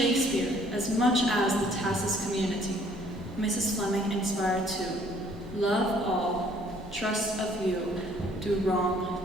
as much as the TASIS community, Mrs. Fleming inspired to love all, trust a few, do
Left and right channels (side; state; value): both; normal; correlation 0.60